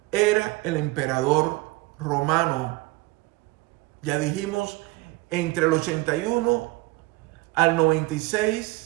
era el emperador romano, ya dijimos, entre el 81 al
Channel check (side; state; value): left; quieter; 21.5 dB